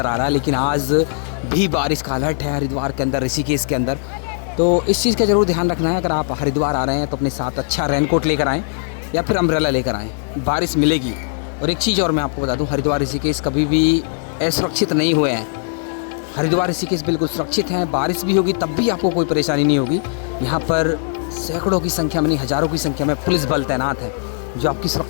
आ रहा है, लेकिन आज भी बारिश का अलर्ट है हरिद्वार के अंदर, ऋषिकेश के अंदर। तो इस चीज़ का ज़रूर ध्यान रखना है। अगर आप हरिद्वार आ रहे हैं तो अपने साथ अच्छा रेनकोट लेकर आएँ या फिर अम्ब्रेला लेकर आएँ, बारिश मिलेगी। और एक चीज़ और मैं आपको बता दूं, हरिद्वार ऋषिकेश कभी भी असुरक्षित नहीं हुए हैं। हरिद्वार ऋषिकेश बिल्कुल सुरक्षित हैं, बारिश भी होगी तब भी आपको कोई परेशानी नहीं होगी। यहाँ पर सैकड़ों की संख्या में नहीं हज़ारों की संख्या में पुलिस बल तैनात है जो आपकी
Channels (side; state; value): right; silent; digital silence